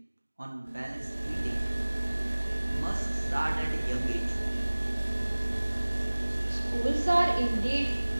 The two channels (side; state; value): both; inverted; correlation -1.00